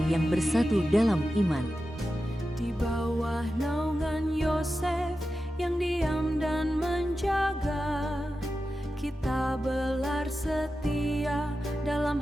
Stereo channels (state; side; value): normal; both; correlation 0.92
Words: yang bersatu dalam iman. Di bawah naungan Yosef yang diam dan menjaga, kita belar setia dalam